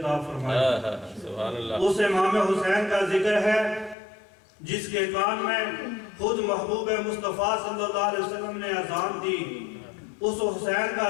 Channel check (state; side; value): drops out; right; at 4.0 s